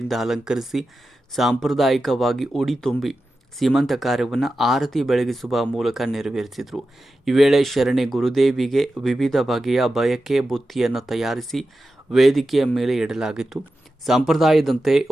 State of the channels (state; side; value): normal; both; correlation 0.92